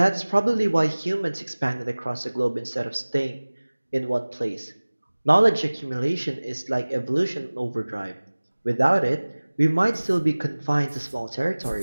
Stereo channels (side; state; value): both; inverted; correlation -1.00